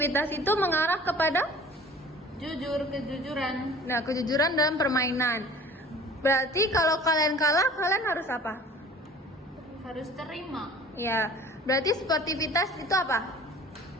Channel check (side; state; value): both; normal; correlation 0.46